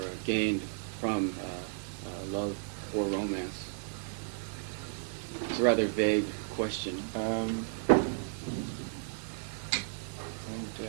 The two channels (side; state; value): left; silent; digital silence